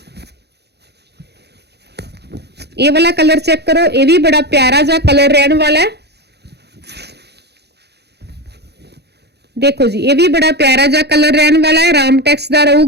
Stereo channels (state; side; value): late; left; 0.48 ms